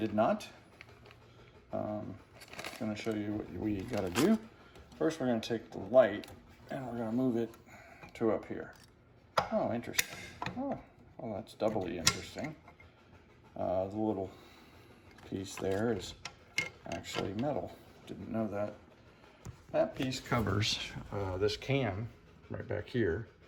not. I'm going to show you what we got to do. First we're going to take the light and we're going to move it to up here. Oh, interesting. Oh, well, that's doubly interesting. The little piece there is actually metal. Didn't know that. That piece covers this cam right back here,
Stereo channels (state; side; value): identical; both; correlation 1.00